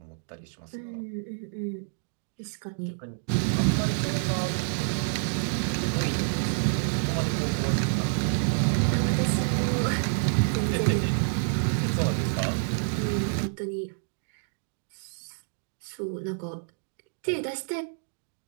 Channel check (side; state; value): left; silent; digital silence